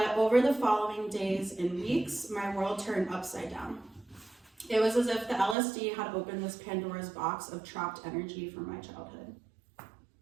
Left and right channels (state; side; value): drops out; left; at 5.6 s